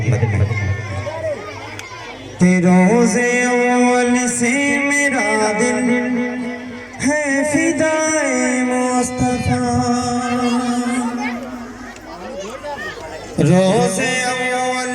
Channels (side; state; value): both; identical; correlation 1.00